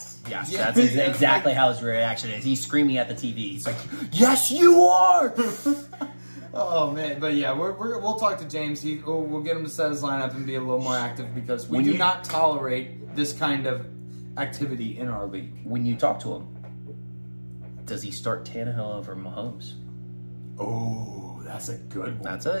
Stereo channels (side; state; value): both; inverted; correlation -1.00